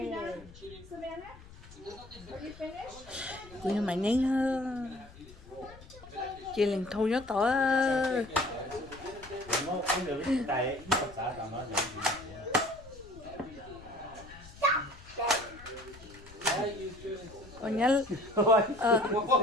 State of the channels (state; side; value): noise; left; rumble, 19 dB below the sound